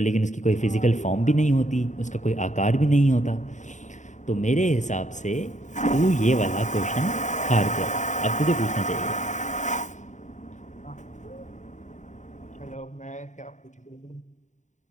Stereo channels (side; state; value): right; late; 0.35 ms